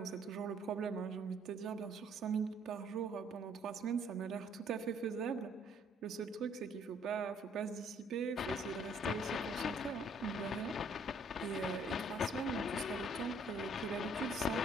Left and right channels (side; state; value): both; normal; correlation 0.63